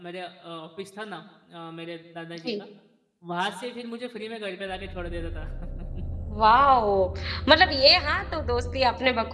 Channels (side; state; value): both; identical; correlation 1.00